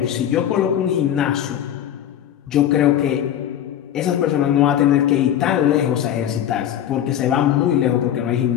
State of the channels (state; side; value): quieter; right; 10.7 dB